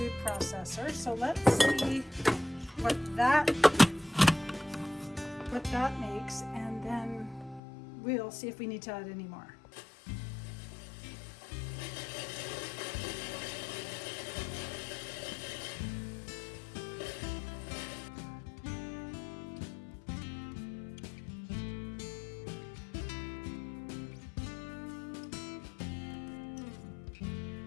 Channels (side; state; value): right; drops out; at 7.6 s